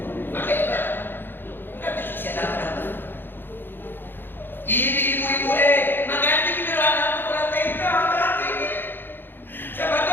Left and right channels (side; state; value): right; late; 0.099 ms